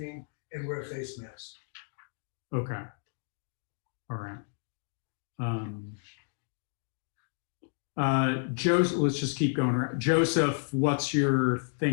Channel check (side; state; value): right; silent; digital silence